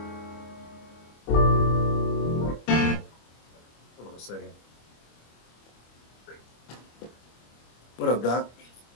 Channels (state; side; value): late; right; 25 ms